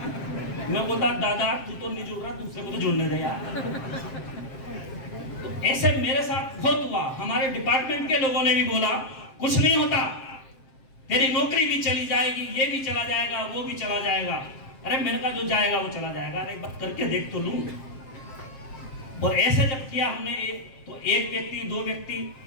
मैं बोलता दादा तू तो नहीं जुड़ रहा, दूसरे को तो जुड़ने दे यार। तो ऐसे मेरे साथ बहुत हुआ। हमारे डिपार्टमेंट के लोगों ने भी बोला कुछ नहीं होता, तेरी नौकरी भी चली जाएगी, ये भी चला जाएगा, वो भी चला जाएगा। अरे मेरे का जो जाएगा वो चला जाएगा, अरे एक बार करके देख तो लूं। और ऐसे जब किया हमने तो एक व्यक्ति, दो व्यक्ति,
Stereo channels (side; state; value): right; late; 7.6 ms